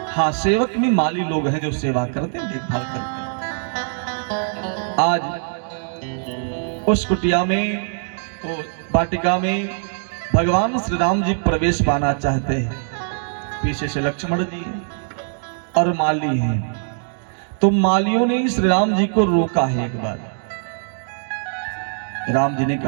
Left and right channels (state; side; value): silent; left; digital silence